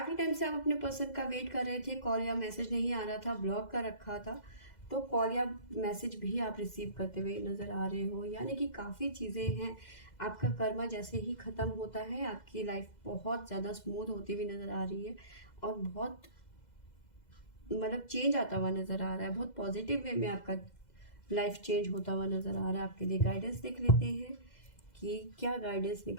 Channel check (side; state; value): right; late; 2.0 ms